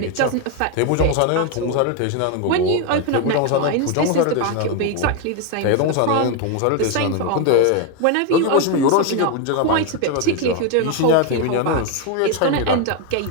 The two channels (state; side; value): different; both; correlation 0.01